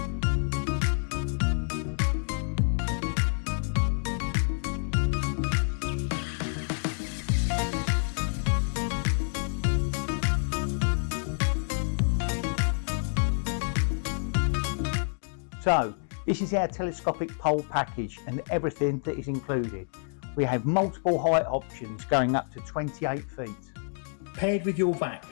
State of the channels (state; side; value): silent; right; digital silence